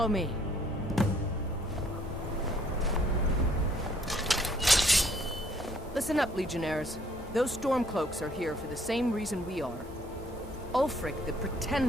me. Listen up, Legionnaires. Those Stormcloaks are here for the same reason we are. Ulfric, the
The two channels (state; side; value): normal; both; correlation 0.64